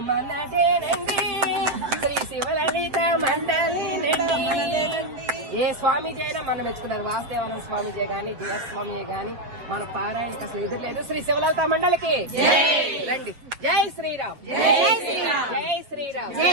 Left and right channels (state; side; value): late; left; 7.9 ms